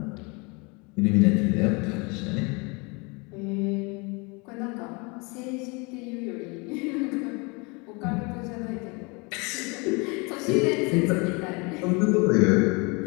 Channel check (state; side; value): quieter; right; 29.3 dB